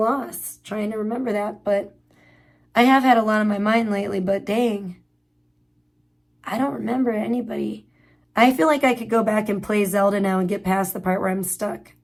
trying to remember that, but I have had a lot on my mind lately, but dang, I don't remember anybody. I feel like I could go back and play Zelda now and get past the part where I'm stuck.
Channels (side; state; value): both; identical; correlation 1.00